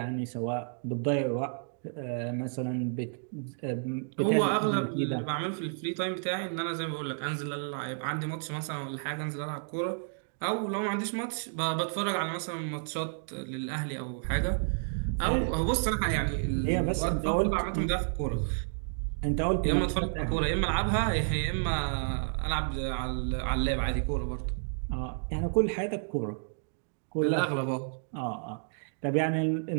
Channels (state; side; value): silent; left; digital silence